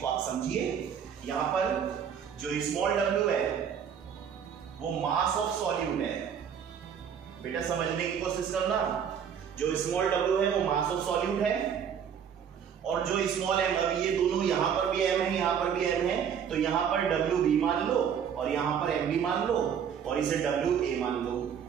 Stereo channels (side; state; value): left; quieter; 8.0 dB